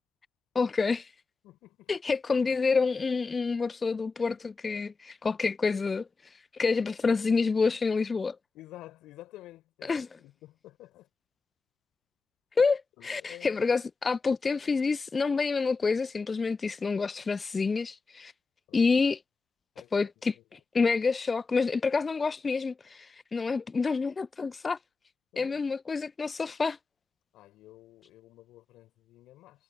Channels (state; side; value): quieter; right; 4.3 dB